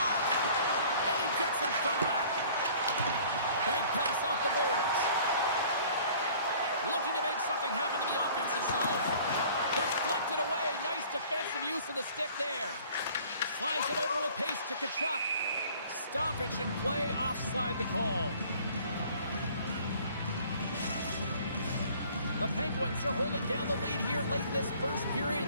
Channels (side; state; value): both; inverted; correlation -0.52